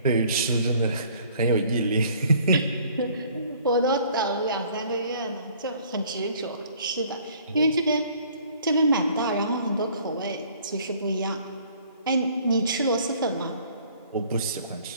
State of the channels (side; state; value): both; inverted; correlation -0.57